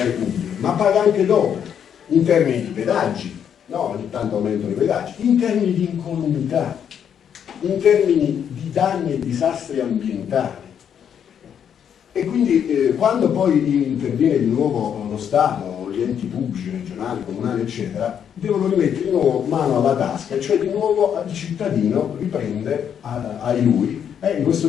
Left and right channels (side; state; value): right; quieter; 8.5 dB